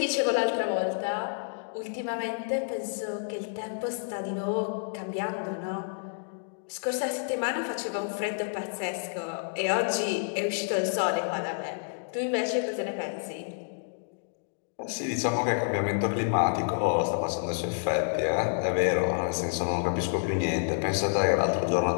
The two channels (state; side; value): silent; right; digital silence